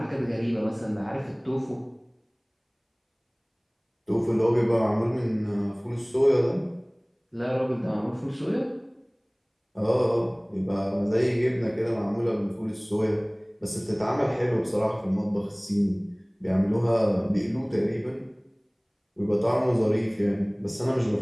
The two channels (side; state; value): both; identical; correlation 1.00